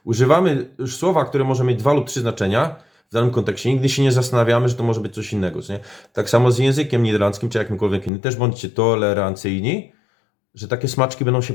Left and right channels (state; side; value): drops out; right; at 8.1 s